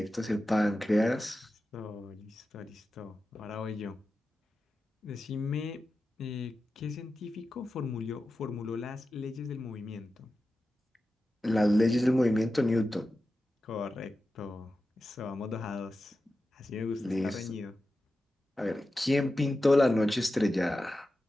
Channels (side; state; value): both; normal; correlation 0.92